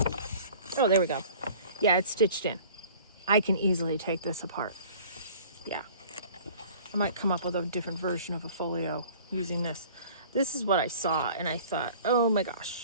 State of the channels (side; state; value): both; inverted; correlation -0.48